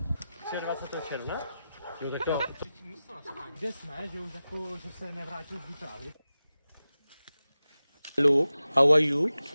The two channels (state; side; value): inverted; both; correlation -0.94